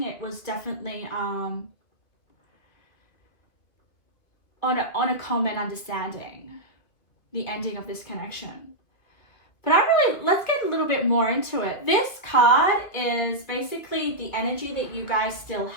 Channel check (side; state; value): right; late; 2.3 ms